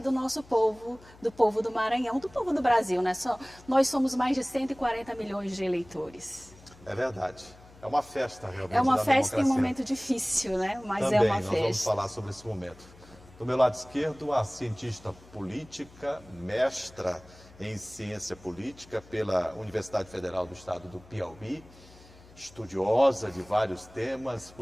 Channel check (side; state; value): left; noise; hum, 23 dB below the sound